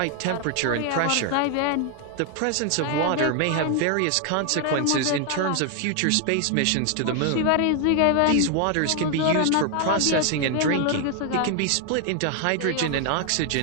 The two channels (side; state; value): both; different; correlation 0.00